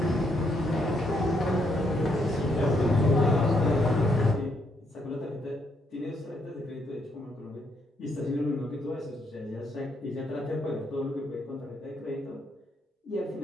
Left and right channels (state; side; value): normal; both; correlation 0.75